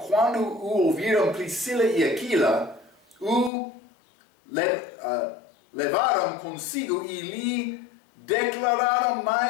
o ouviram Priscila e Aquila, o levaram consigo e lhe declararam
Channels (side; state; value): right; drops out; at 3.5 s